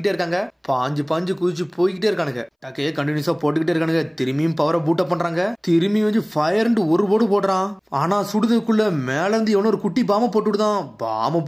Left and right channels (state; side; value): identical; both; correlation 1.00